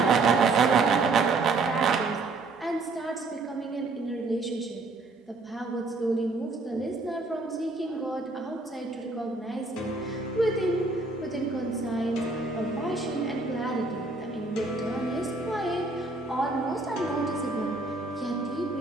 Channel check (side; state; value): left; quieter; 3.4 dB